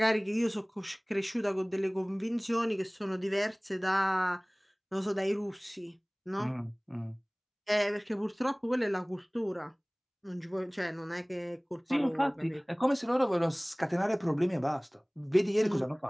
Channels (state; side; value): identical; both; correlation 1.00